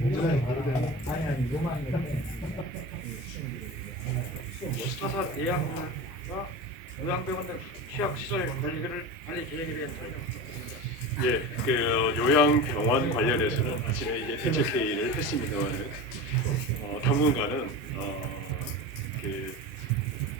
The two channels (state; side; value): normal; both; correlation 0.29